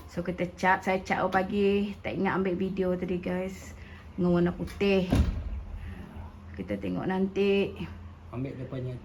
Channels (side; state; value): both; identical; correlation 1.00